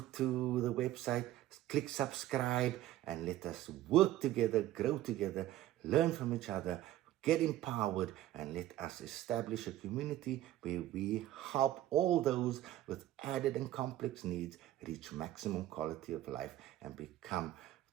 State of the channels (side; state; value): left; quieter; 14.1 dB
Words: the website, click subscribe, and let us work together, grow together, learn from each other, get empowered, and let us establish a community where we help all those with added and complex needs reach maximum quality of life and become